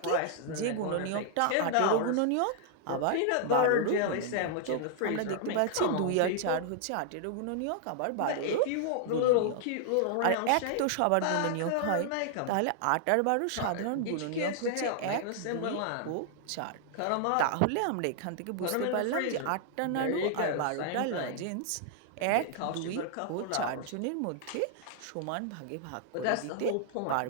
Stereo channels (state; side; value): different; both; correlation -0.01